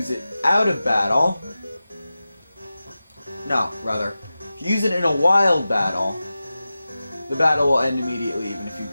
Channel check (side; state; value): both; inverted; correlation -0.95